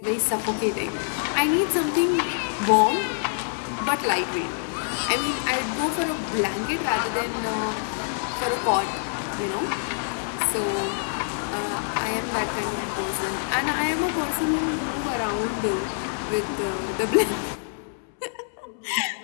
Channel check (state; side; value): silent; right; 61 dB below the other